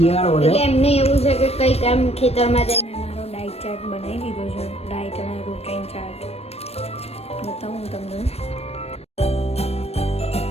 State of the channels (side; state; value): right; late; 0.30 ms